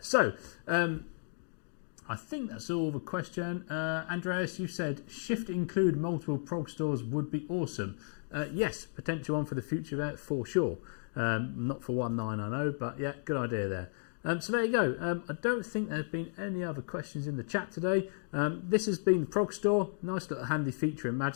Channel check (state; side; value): silent; right; digital silence